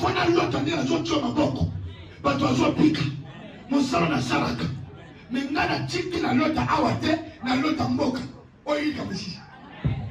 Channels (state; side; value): identical; both; correlation 1.00